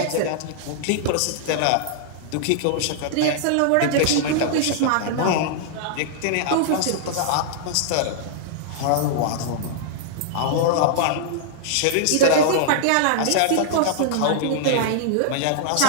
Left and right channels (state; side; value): different; both; correlation -0.01